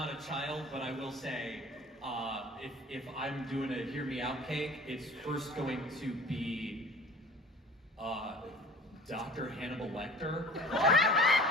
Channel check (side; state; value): both; normal; correlation 0.44